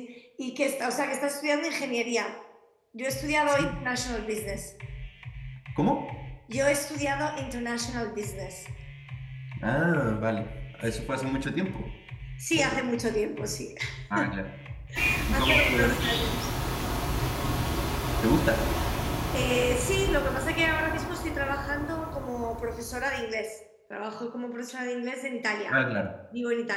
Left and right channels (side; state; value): both; identical; correlation 1.00